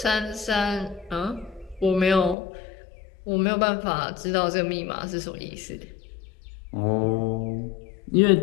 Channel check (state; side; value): drops out; right; at 2.4 s